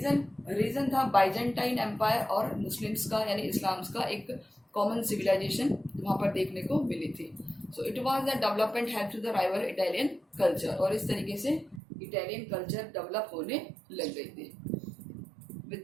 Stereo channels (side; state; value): left; drops out; at 11.8 s